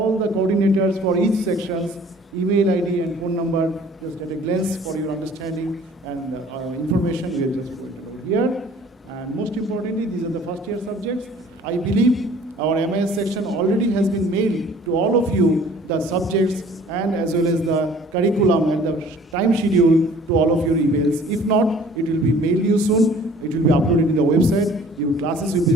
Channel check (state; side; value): normal; both; correlation 0.52